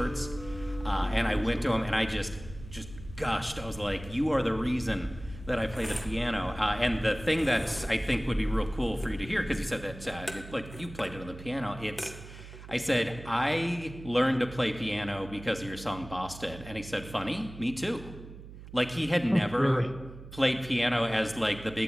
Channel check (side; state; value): right; noise; hum, 15 dB below the sound